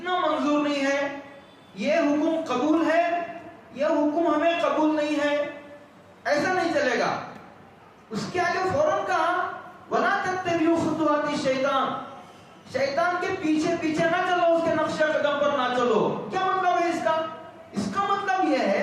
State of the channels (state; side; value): identical; both; correlation 1.00